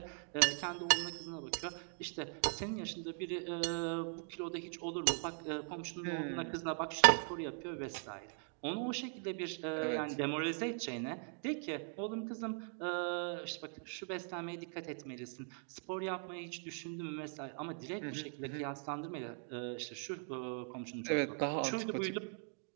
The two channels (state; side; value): silent; left; 51 dB below the other